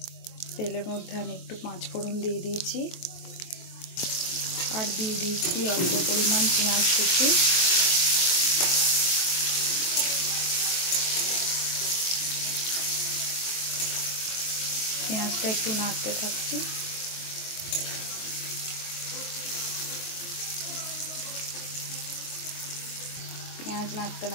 তেলের মধ্যে আমি একটু পাঁচ ফোড়ন দিয়ে দিয়েছি, আর দিয়ে দিয়েছি অল্প পরিমাণ পেঁয়াজ কুচি। পেঁয়াজটা একটু নাড়তে থাকছি। পেঁয়াজ নাড়তে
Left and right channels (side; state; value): right; late; 23 ms